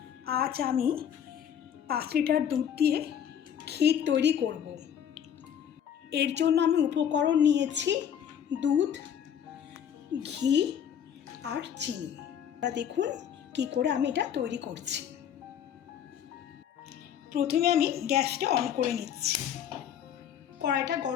আজ আমি 5 লিটার দুধ দিয়ে ক্ষীর তৈরি করব। এর জন্য আমি উপকরণ নিয়েছি দুধ, ঘি আর চিনি। আপনারা দেখুন কি করে আমি এটা তৈরি করছি। প্রথমে আমি গ্যাসটা অন করে নিচ্ছি। কড়াইটা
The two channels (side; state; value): right; quieter; 9.0 dB